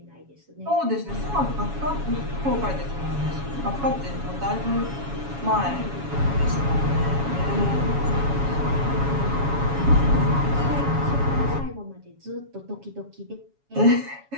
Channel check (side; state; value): left; late; 7.2 ms